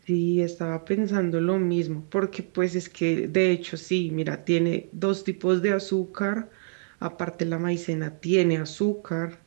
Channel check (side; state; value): left; silent; digital silence